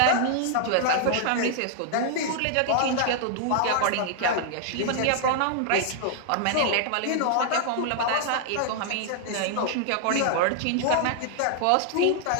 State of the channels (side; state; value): both; different; correlation 0.00